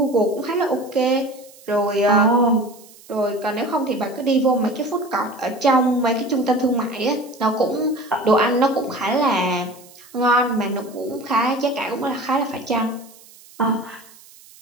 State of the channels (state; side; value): noise; right; hiss, 23 dB below the sound